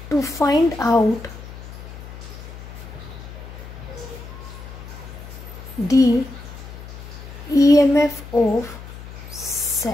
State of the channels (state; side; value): noise; left; hum, 13 dB below the sound